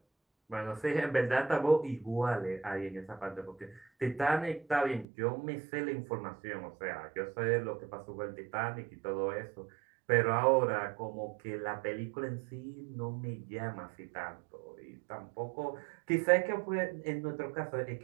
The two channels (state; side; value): drops out; left; at 5.1 s